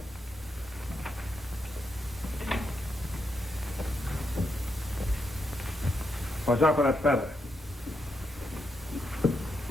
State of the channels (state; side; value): normal; both; correlation 0.82